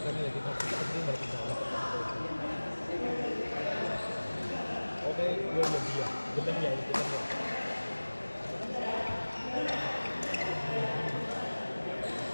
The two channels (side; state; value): both; inverted; correlation -1.00